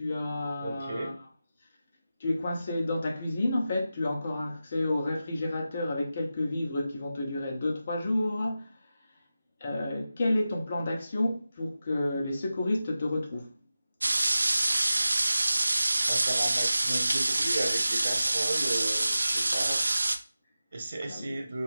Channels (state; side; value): inverted; both; correlation -0.93